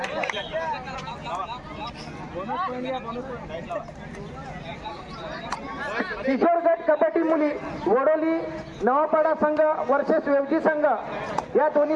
Thank you. किशोर गट कबड्डी मुली वडोली नवापाडा संघ वर्सेस वेवजी संघ या दोन्ही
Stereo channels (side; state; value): both; identical; correlation 1.00